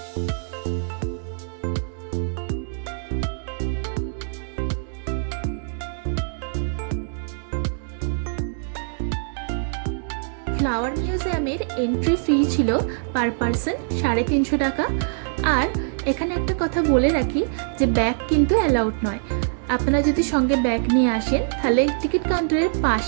ফ্লাওয়ার মিউজিয়ামের এন্ট্রি ফি ছিল পার পারসন 350 টাকা। আর এখানে একটা কথা বলে রাখি যে ব্যাগ কিন্তু অ্যালাউড নয়। আপনারা যদি সঙ্গে ব্যাগ নিয়ে আসেন তাহলে টিকিট কাউন্টারের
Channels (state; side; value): silent; left; 63 dB below the other